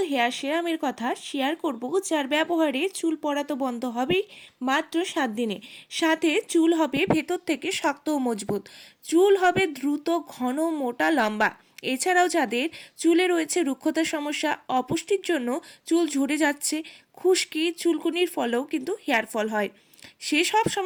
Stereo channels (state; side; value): identical; both; correlation 1.00